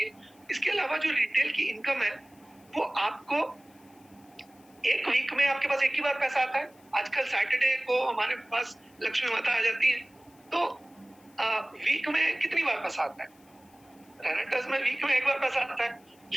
इसके अलावा जो रिटेल की इनकम है वो आपको एक वीक में आपके पास एक ही बार पैसा आता है। आजकल सैटरडे को हमारे पास लक्ष्मी माता आ जाती है, तो वीक में कितनी बार पैसा आता है? रेनेटर्स में वीक में एक बार पैसा आता है।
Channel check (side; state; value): left; noise; hiss, 30 dB below the sound